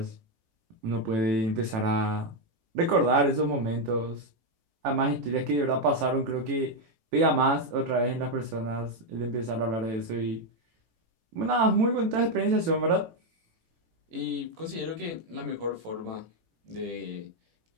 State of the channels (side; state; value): left; late; 18 ms